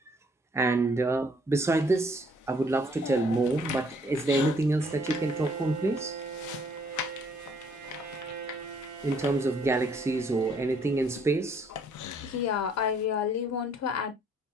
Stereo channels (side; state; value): both; normal; correlation 0.64